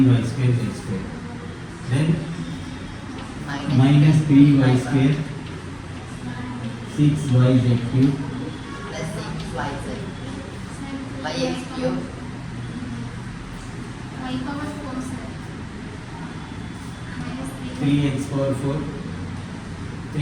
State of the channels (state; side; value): identical; both; correlation 1.00